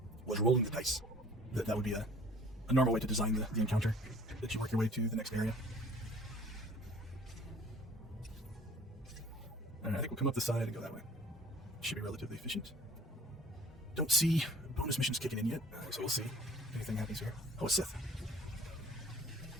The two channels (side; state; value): both; normal; correlation 0.52